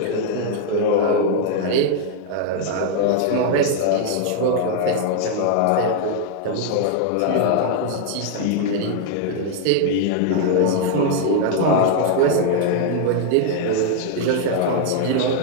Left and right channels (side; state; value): both; different; correlation 0.00